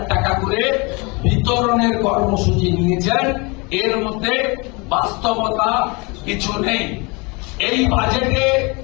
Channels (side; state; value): right; quieter; 28.2 dB